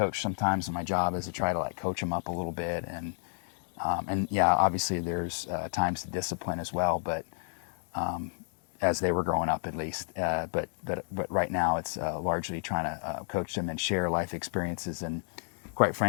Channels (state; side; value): silent; right; digital silence